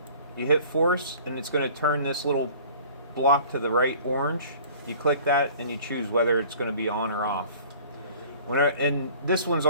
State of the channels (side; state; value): both; inverted; correlation -0.48